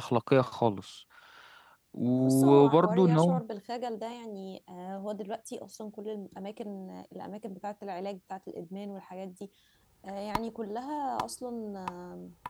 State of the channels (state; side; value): identical; both; correlation 1.00